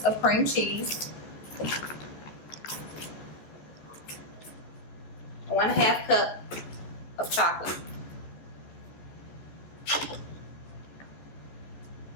of cream cheese, 1/2 cup of chocolate,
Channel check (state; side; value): late; right; 14 ms